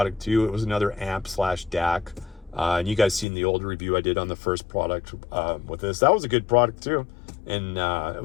too. It was another amp/DAC. And you guys seen the old review I did on the first product with this. That was a good product too. And it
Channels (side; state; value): right; drops out; at 3.2 s